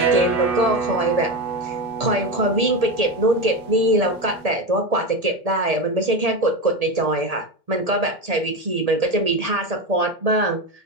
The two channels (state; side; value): late; left; 1.8 ms